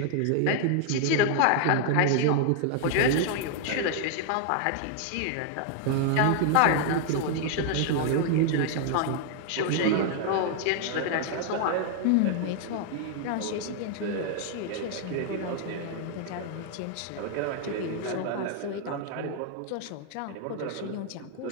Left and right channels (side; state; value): both; different; correlation 0.00